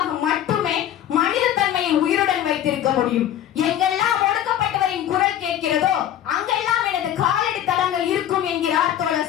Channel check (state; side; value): quieter; right; 11.1 dB